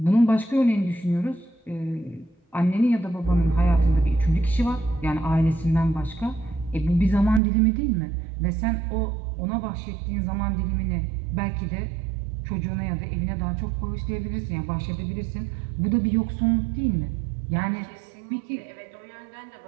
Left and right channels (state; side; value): drops out; left; at 7.4 s